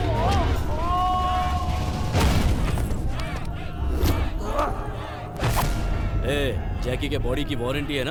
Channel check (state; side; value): identical; both; correlation 1.00